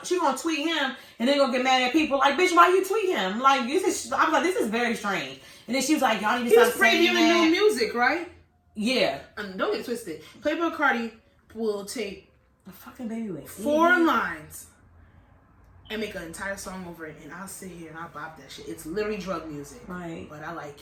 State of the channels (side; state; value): both; identical; correlation 1.00